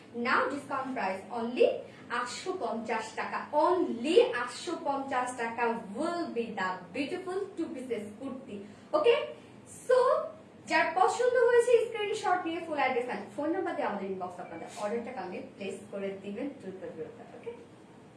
নাও ডিসকাউন্ট প্রাইস অনলি 850 টাকা। অনলি 850 টাকা will be the beautiful two pieces kurti. Okay, so যার পছন্দ হয়েছে স্ক্রিনশট নিয়ে full address and phone number দিয়ে আমাদের ইনবক্স আপনাদের অর্ডারটা কালকে প্লেস করে দিবেন দ্রুত। ওকে,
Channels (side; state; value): both; identical; correlation 1.00